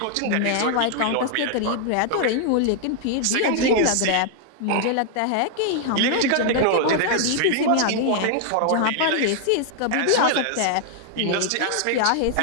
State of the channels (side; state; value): both; different; correlation 0.00